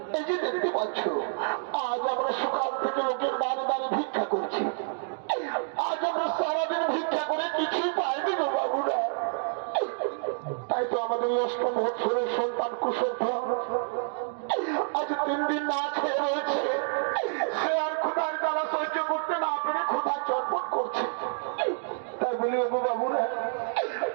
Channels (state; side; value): silent; left; digital silence